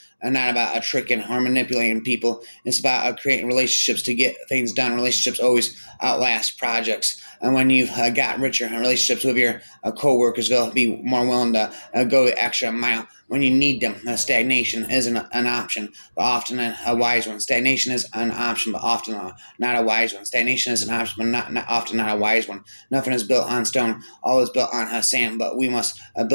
not about tricking or manipulating people. It's about creating relationships to get things done. Relationships always outlast projects. And when you've got richer relationships with your coworkers, they'll be more willing to go the extra mile when you need them. Stagnation isn't an option, but often a wise one. Stagnation is an option, but often not a wise one. Stagnation is an option, but not often not a wise one. Nothing is built on stone. All is built on sand, but we must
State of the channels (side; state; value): both; inverted; correlation -1.00